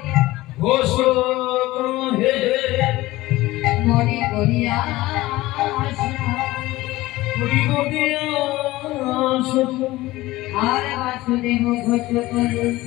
মরি করিয়া আর বাসুদেব ঘোষ করে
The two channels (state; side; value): quieter; right; 18.2 dB